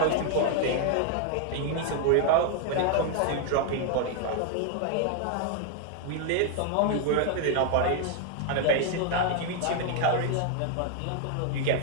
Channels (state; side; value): different; both; correlation 0.00